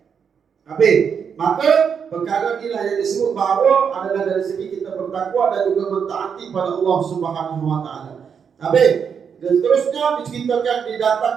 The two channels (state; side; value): quieter; left; 6.9 dB